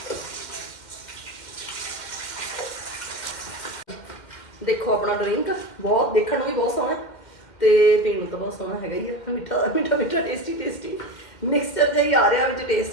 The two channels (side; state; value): right; late; 2.1 ms